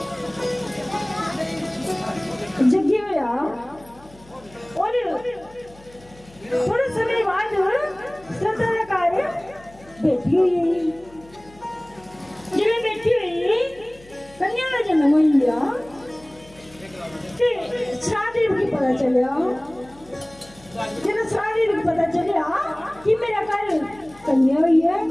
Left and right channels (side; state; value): left; noise; hum, 24 dB below the sound